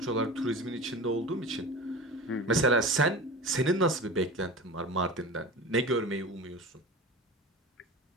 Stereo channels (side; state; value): both; normal; correlation 0.32